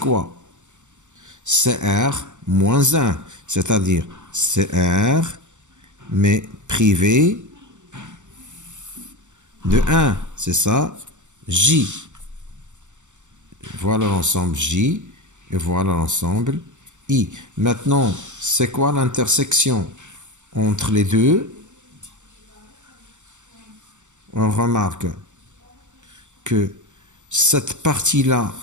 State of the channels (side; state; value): left; late; 0.84 ms